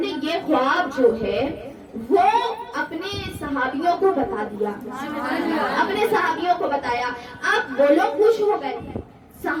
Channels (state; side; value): identical; both; correlation 1.00